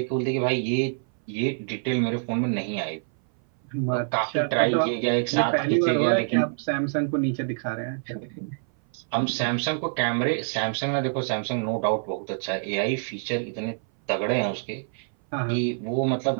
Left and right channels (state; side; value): silent; left; 58 dB below the other